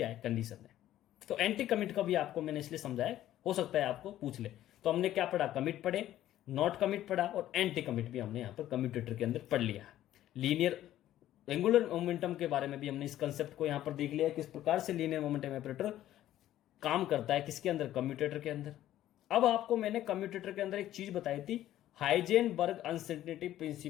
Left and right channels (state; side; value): quieter; right; 13.1 dB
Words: है, कंडीशन है। तो एंटी कमिट का भी आपको मैंने इसलिए समझाया, हो सकता है आपको पूछ ले। तो हमने क्या पढ़ा, कमिट पढ़े, नॉट कमिट पढ़ा और एंटी कमिट भी हमने यहां पर कम्यूटेटर के अंदर पढ़ लिया। लीनियर एंगुलर मोमेंटम के बारे में भी हमने इस कंसेप्ट को यहां पर देख लिया, किस प्रकार से लीनियर मोमेंटम ऑपरेटर काम करता है, किसके अंदर, कम्यूटेटर के अंदर। अब आपको मैंने कम्यूटेटर के अंदर एक चीज बताई थी, हाइजेनबर्ग अनसर्टेनिटी